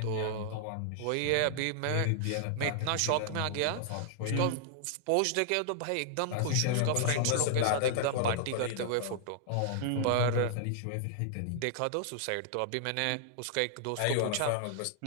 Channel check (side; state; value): both; different; correlation -0.01